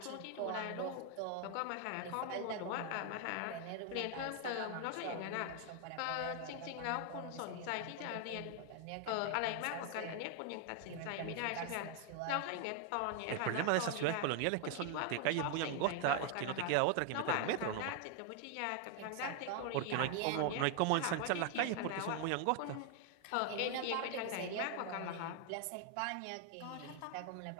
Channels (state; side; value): different; both; correlation 0.00